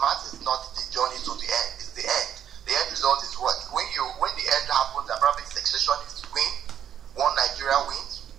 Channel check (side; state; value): left; quieter; 9.6 dB